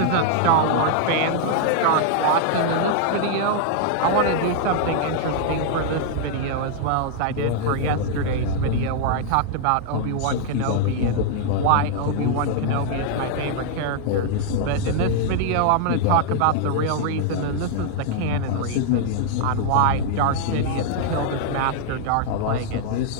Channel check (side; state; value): both; different; correlation -0.01